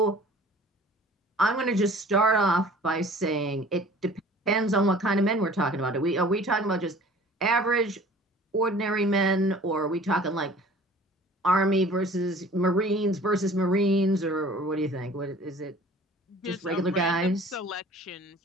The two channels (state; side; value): normal; both; correlation 0.48